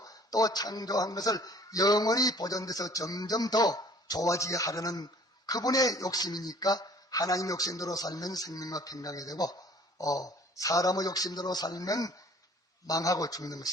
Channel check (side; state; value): both; normal; correlation 0.53